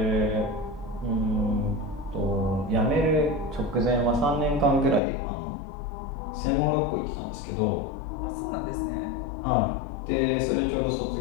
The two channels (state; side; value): drops out; right; at 5.0 s